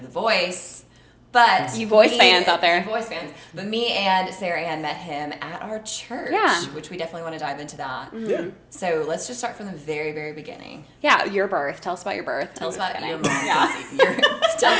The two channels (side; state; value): both; identical; correlation 1.00